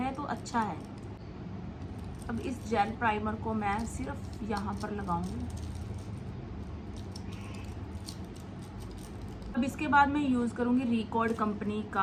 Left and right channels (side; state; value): both; identical; correlation 1.00